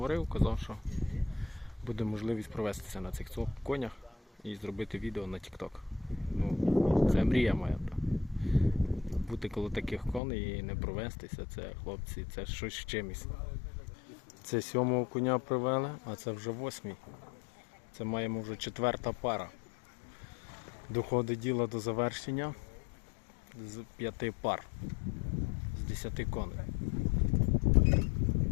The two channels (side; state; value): right; drops out; at 10.2 s